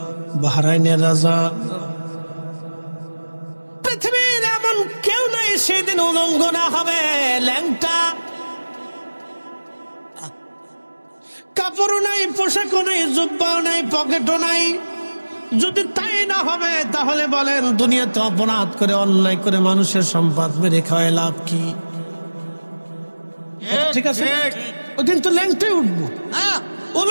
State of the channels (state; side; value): inverted; both; correlation -1.00